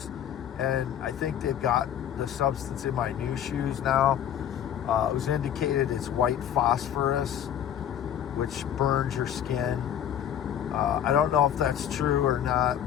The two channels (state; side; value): quieter; right; 9.9 dB